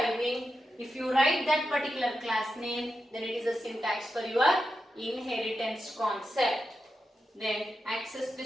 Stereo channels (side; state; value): both; normal; correlation 0.88